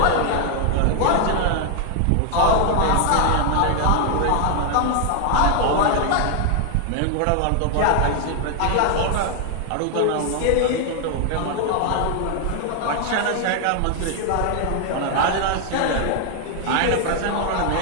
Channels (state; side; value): different; both; correlation 0.00